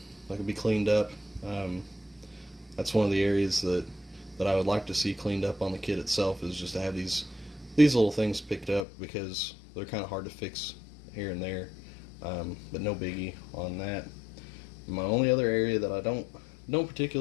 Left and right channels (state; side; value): drops out; right; at 8.8 s